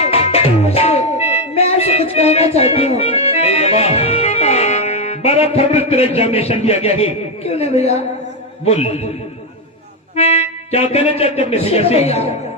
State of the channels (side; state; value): both; normal; correlation 0.07